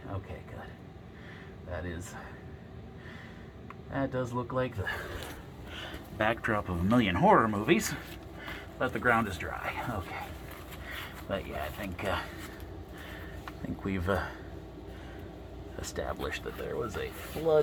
Okay, good. That does look like the backdrop of a million horror movies, but the ground is dry. Okay. But yeah, I think we've established that there was a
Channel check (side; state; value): both; identical; correlation 1.00